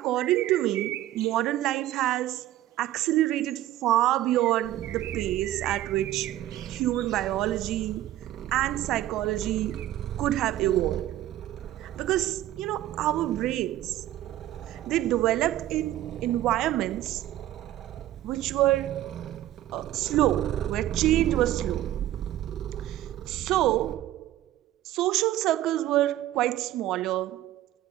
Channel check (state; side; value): quieter; left; 14.0 dB